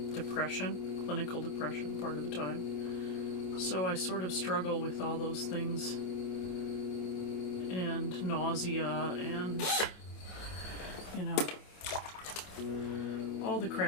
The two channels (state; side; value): late; right; 27 ms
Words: depression, clinical depression part of the time. So I sort of struggle with all those things, and nausea, and, you know, all the